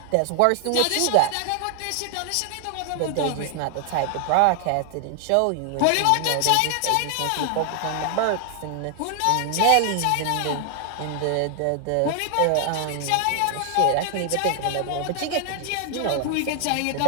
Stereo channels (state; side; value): different; both; correlation 0.00